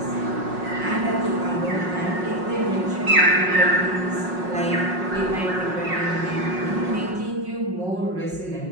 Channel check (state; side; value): late; left; 5.5 ms